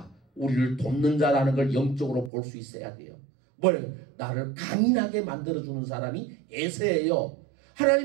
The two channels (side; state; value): left; drops out; at 2.3 s